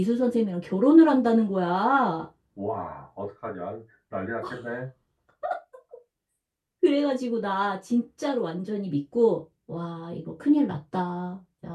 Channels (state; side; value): identical; both; correlation 1.00